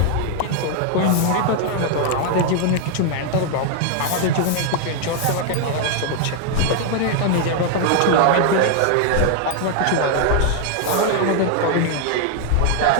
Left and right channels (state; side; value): different; both; correlation 0.00